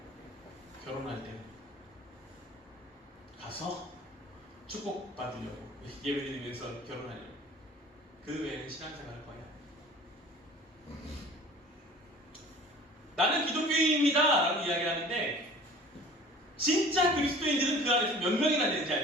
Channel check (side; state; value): both; normal; correlation 0.45